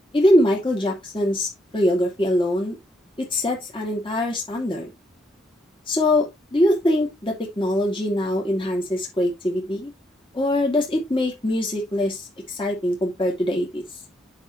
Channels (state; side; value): normal; both; correlation 0.75